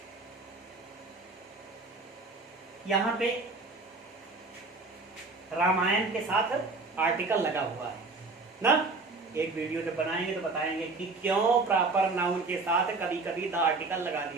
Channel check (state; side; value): quieter; left; 3.7 dB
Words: यहां पे रामायण के साथ आर्टिकल लगा हुआ है ना। एक वीडियो जब बनाएंगे तो बताएंगे कि क्यों प्रॉपर नाउन के साथ कभी कभी द आर्टिकल लगा